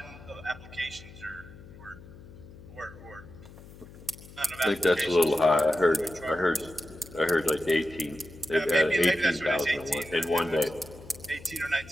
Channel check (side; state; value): left; noise; hum, 18 dB below the sound